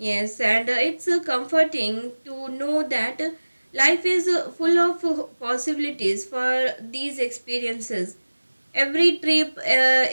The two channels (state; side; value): inverted; both; correlation -1.00